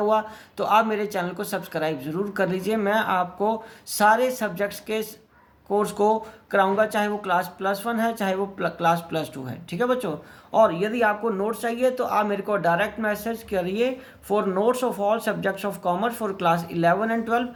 तो आप मेरे चैनल को सब्सक्राइब ज़रूर कर लीजिए। मैं आपको सारे सब्जेक्ट्स के कोर्स को कराऊंगा, चाहे वो क्लास +1 है चाहे वो क्लास +2 है। ठीक है बच्चों, और यदि आपको नोट्स चाहिए तो आप मेरे को डायरेक्ट मैसेज करिए for notes of all subjects of commerce for class 11 and 12।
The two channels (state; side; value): identical; both; correlation 1.00